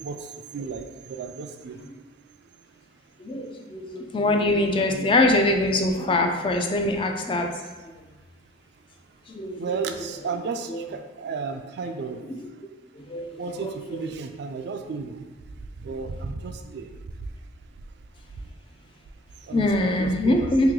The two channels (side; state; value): both; normal; correlation 0.37